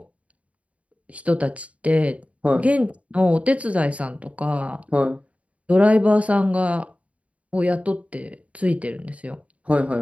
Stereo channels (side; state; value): left; late; 0.066 ms